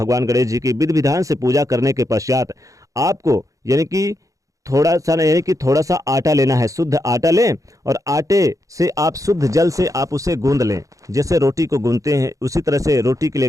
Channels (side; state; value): left; late; 0.16 ms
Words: गणेश जी की विधि विधान से पूजा करने के पश्चात आपको यानी कि थोड़ा सा आटा लेना है। शुद्ध आटा लें और आटे से आप शुद्ध जल से आप उसे गूंद लें। जैसे रोटी को गूंदते हैं उसी तरह से रोटी के लिए